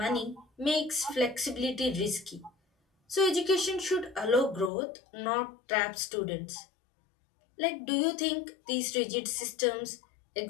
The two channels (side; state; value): right; drops out; at 4.7 s